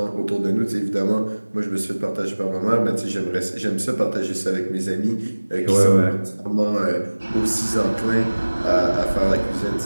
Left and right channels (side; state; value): both; inverted; correlation -1.00